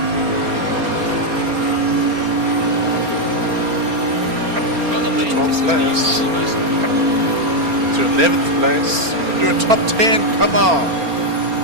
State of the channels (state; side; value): late; left; 4.3 ms